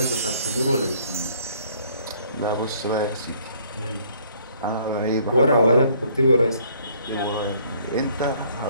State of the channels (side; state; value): both; inverted; correlation -0.60